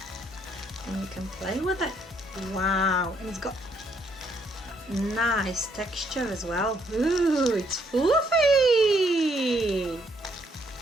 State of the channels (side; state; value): both; normal; correlation 0.70